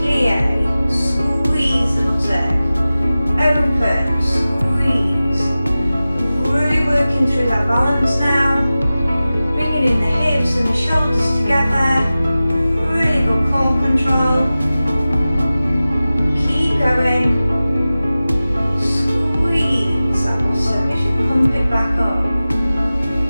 Squeeze the buttock. Open, squeeze. Really working through that balance now. Bringing in the hips and the shoulders together. Really good core control. Keep going. Squeeze that bottom as you pump it back up.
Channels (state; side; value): inverted; both; correlation -0.96